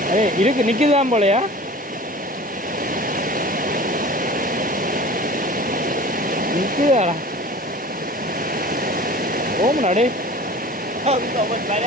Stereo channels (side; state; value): both; normal; correlation 0.40